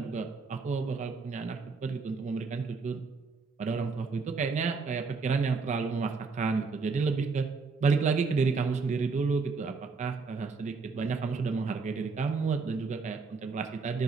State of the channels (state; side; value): quieter; left; 4.6 dB